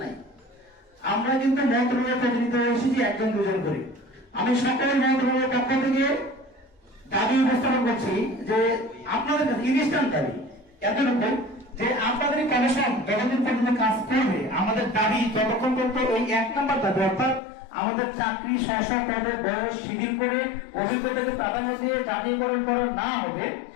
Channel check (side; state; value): right; drops out; at 17.4 s